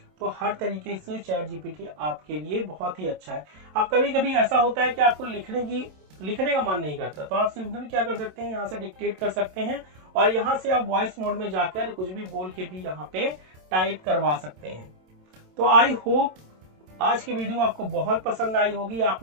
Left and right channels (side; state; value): left; late; 27 ms